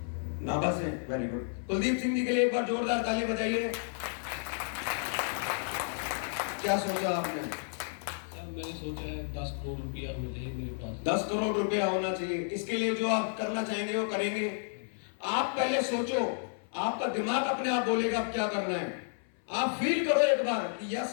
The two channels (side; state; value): right; silent; 57 dB below the other